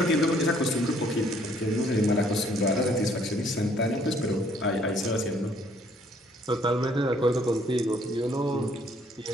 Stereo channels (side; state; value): both; normal; correlation 0.63